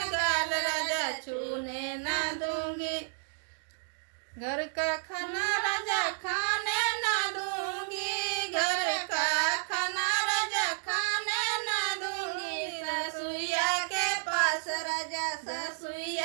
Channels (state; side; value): silent; left; digital silence